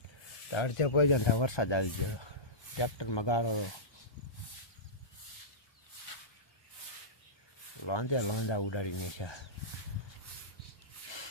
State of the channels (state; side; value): late; right; 1.2 ms